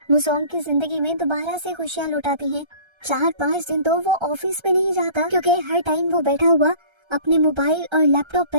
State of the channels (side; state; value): left; late; 1.3 ms